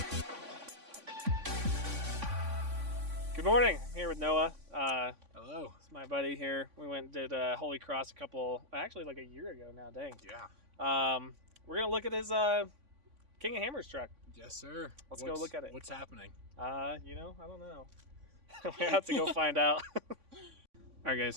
Good morning. I'm here with Noah. Hello. It's my buddy here. We went and did Holy Cross actually like a year ago now, dang. Yeah. We're going to look at his King of Hammers truck. Yes, sir. Let's go look at it. What's happening? I don't know. We have to go find out. All right,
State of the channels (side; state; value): left; late; 3.5 ms